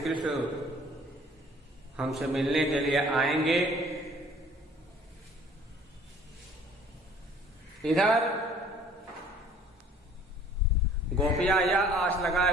कृष्ण हमसे मिलने के लिए आएंगे। इधर गोपियां यह आस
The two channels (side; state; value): both; normal; correlation 0.54